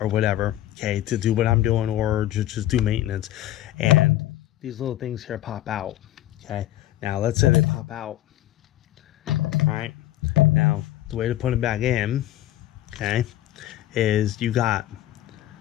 or whatever, okay, to do what I'm doing, or just do maintenance, and these little things here pop out. Okay. Now let's say they pop out. All right. Now the way to put them back in, okay, is you got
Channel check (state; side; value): quieter; right; 14.1 dB